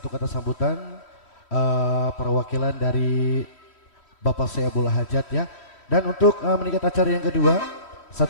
kata sambutan perwakilan dari Bapak Saibul Hajat ya. Dan untuk meningkat acara yang kedua,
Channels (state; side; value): late; right; 3.1 ms